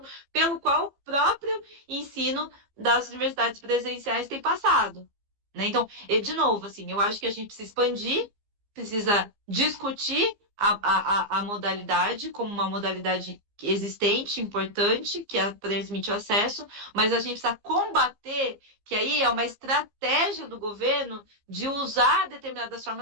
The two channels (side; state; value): left; late; 15 ms